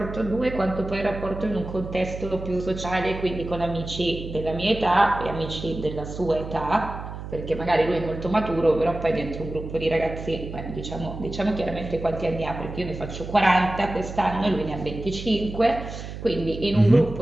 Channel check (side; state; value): right; noise; hum, 9 dB below the sound